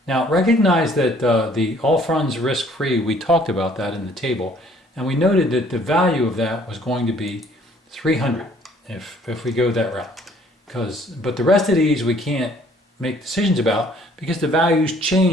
Now recognize that the all funds risk-free, we talked about that in the table, and we noted that the value of that was going to be 300 if we go that route. But the rest of these we can't make decisions about because the values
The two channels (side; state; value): both; normal; correlation 0.59